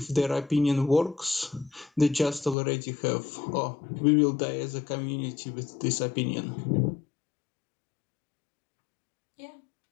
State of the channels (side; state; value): right; drops out; at 2.6 s